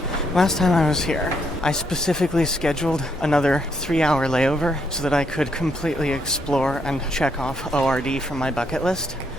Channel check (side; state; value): both; normal; correlation 0.75